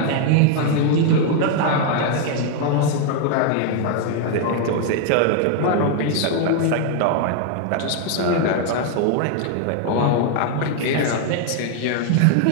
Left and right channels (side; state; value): both; different; correlation 0.00